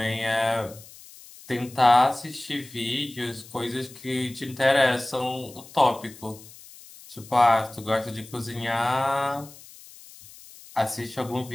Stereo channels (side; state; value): left; noise; hiss, 20 dB below the sound